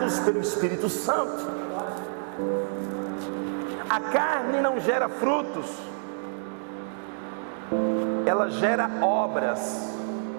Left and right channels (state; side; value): silent; left; digital silence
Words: pelo Espírito Santo. A carne não gera frutos, ela gera obras,